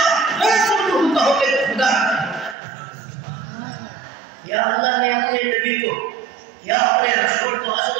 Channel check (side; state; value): left; drops out; at 2.6 s